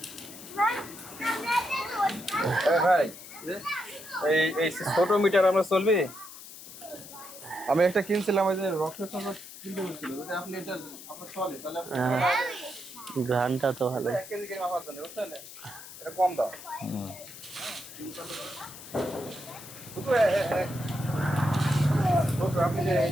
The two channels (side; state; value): left; noise; hiss, 15 dB below the sound